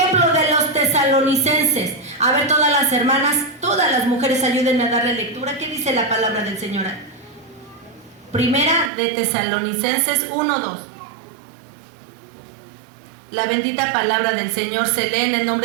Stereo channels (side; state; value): left; drops out; at 8.9 s